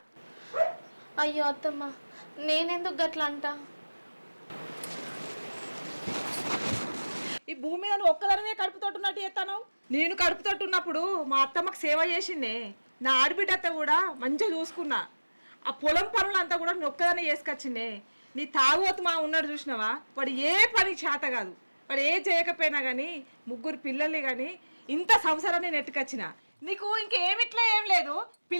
అయ్యో అత్తమ్మ, నేనెందుకు గట్లా అంట? ఈ భూమి మీద నువ్వు ఒక్కదానివే కడుపుతోటున్నట్టు చేస్తాను. నేను కడుపుతోటున్నప్పుడు మా అత్తమ్మకు సేవ చేసిండే. నా ఆడబిడ్డ అత్త కూడా మంచిగా చూసుకున్నా. ఆ పొలం పనులంతా కూడా నేను ఒక్కదానే చేసుకొచ్చిండే. నీ తాగుబోతు మా ఉన్నాడు చూసినావా, వాడు ఏ పని చేత కాదు. వాడు ఏ చేయకపోయినా కానీ 3 పిల్లల్ని కానీ ఇంత సంసారాన్ని నెట్టుకొచ్చిన. నీకు ఇంకేమిట్లా ఏం లేదు.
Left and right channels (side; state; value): both; inverted; correlation -1.00